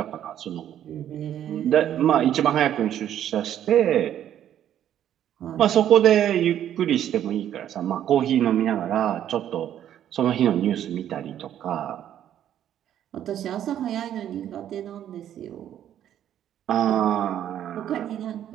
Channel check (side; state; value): left; quieter; 10.7 dB